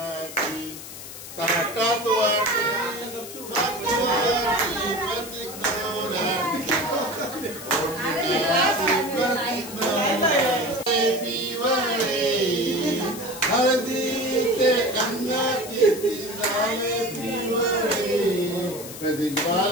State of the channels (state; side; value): noise; left; hiss, 12 dB below the sound